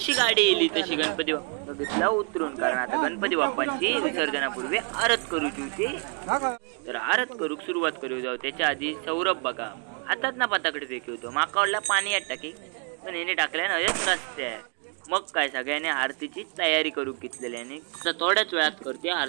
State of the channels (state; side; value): quieter; left; 39.2 dB